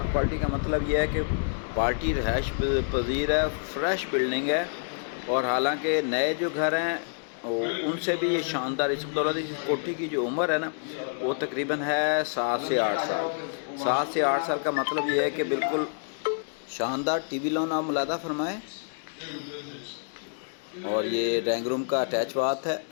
पार्टी का मतलब यह है कि पार्टी रहायश पजीर है, फ्रेश बिल्डिंग है। और हालांकि नए जो घर हैं उनसे भी ये शानदार। इस बदौलत इस कोठी की जो उम्र है ना, वो तकरीबन है 7 से 8 साल। 7 से 8 साल का मतलब ये है कि बिल्कुल शानदार टीवी लोन आप मुलादा फरमाएँ। और ये ड्राइंग रूम का अटैच बाथ है,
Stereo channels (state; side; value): silent; right; digital silence